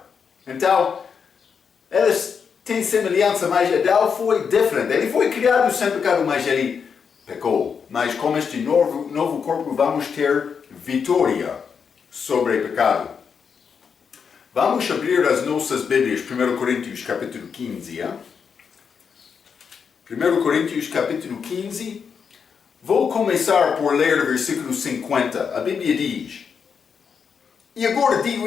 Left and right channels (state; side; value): quieter; right; 6.4 dB